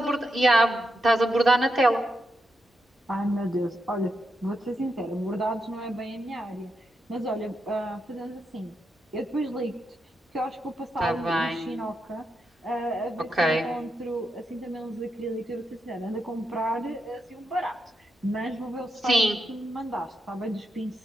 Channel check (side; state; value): both; normal; correlation 0.84